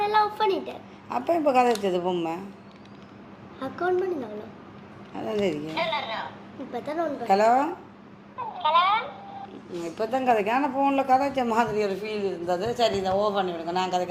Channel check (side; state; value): both; identical; correlation 1.00